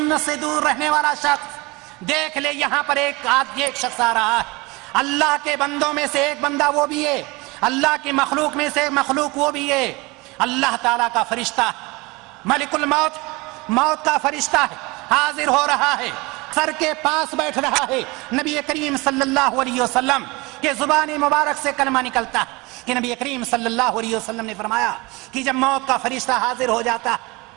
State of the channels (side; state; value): left; quieter; 24.4 dB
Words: سے دور رہنے والا شخص، دیکھ لے یہاں پر ایک شخص آ رہا ہے. اللہ کے بندوں میں سے ایک بندہ وہ بھی ہے، اللہ کی مخلوق میں سے ایک مخلوق وہ بھی ہے، اللہ تعالیٰ کا فرشتہ، ملک الموت، موت کا فرشتہ ہے، حاضر ہو رہا ہے. سر کے پاس بیٹھ رہا ہے، نبی کریم صلی اللہ علیہ وسلم کے زبان مبارک سے کلمہ نکلتا ہے کہ نبی کریم صلی اللہ علیہ وسلم نے فرمایا کہ جب موت کا فرشتہ حاضر ہو جاتا،